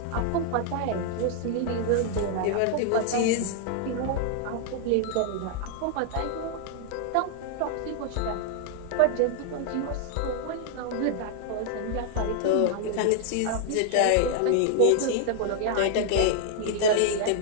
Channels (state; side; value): different; both; correlation 0.00